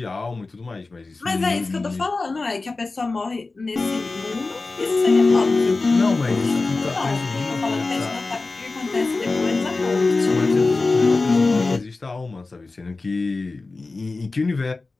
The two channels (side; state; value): right; quieter; 3.6 dB